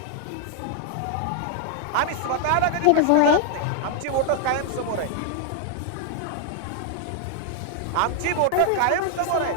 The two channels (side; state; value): both; different; correlation 0.00